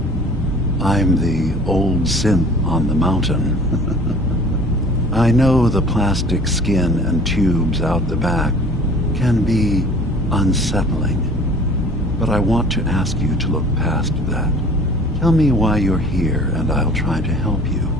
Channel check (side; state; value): both; normal; correlation 0.48